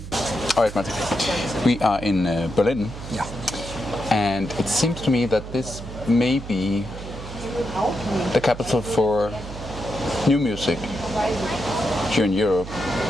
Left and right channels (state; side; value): noise; right; hum, 11 dB below the sound